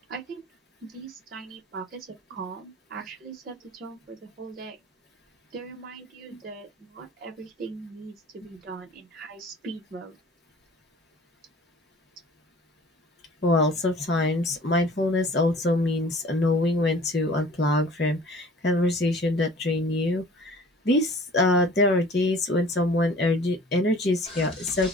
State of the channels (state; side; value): normal; both; correlation 0.48